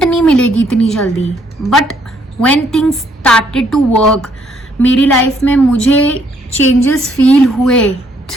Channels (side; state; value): both; normal; correlation 0.68